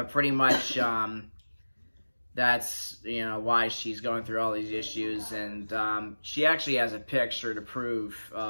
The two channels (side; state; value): both; inverted; correlation -1.00